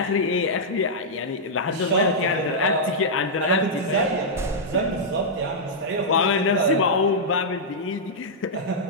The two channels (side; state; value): both; normal; correlation -0.09